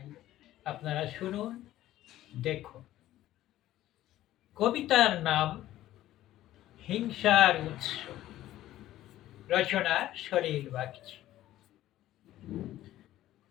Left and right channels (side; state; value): right; quieter; 14.1 dB